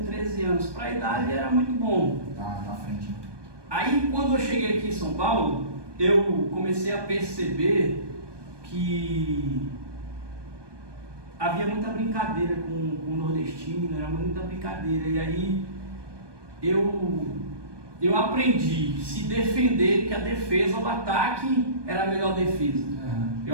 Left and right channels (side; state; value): left; late; 1.2 ms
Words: 13 anos. Para a idade era muito bom. Tá na frente. Aí quando eu cheguei aqui em São Paulo, eu comecei a perceber que havia muita brincadeira com o nordestino, era muita brincadeira. E aí eu aprendi a se defender, que a defesa, o ataque era a melhor defesa.